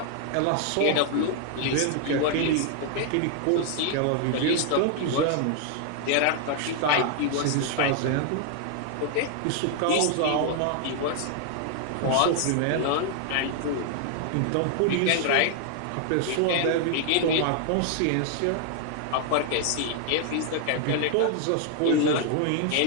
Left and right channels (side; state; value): both; different; correlation 0.00